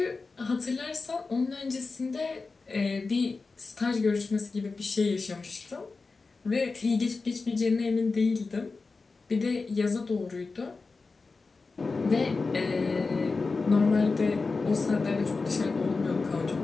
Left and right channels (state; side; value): quieter; right; 4.1 dB